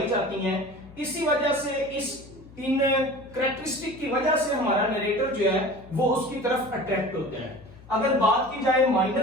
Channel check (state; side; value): noise; left; hum, 21 dB below the sound